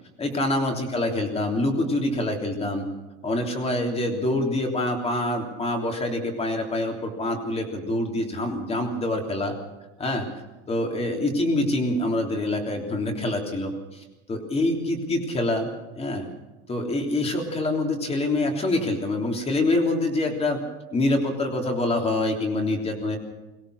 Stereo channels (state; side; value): normal; both; correlation 0.53